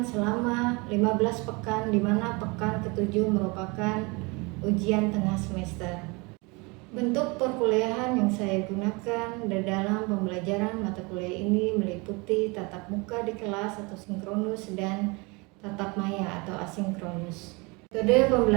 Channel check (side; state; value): left; quieter; 27.6 dB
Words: selama 15 pekan, di mana pekan ke-7 merupakan ujian tengah semester. Bentuk perkuliahan yang saya gunakan dalam pembelajaran mata kuliah ini meliputi tatap muka di kelas atau sinkronus dan tatap maya atau asinkronus. Metode